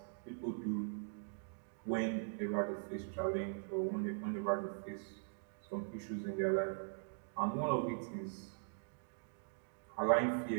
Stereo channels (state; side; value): silent; left; digital silence